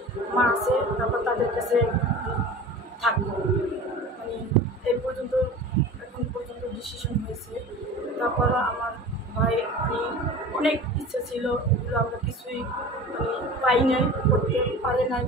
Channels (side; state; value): both; normal; correlation 0.37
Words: মা আছে, তারপর তাদের কাছে থাকবো। এই পর্যন্ত এখন পর্যন্ত ডিসিশন হয়েছে। তারপরও আমার ভাই অনেক ইচ্ছা ছিল, এগুলো আমরা কিছুই পাই নাই, করতে পারে নাই।